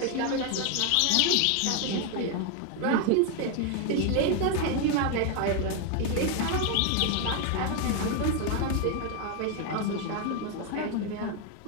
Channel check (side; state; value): both; different; correlation 0.01